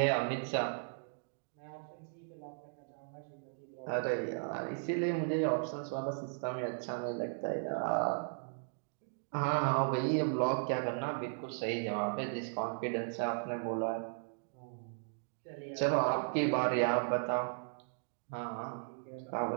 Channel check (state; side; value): silent; left; digital silence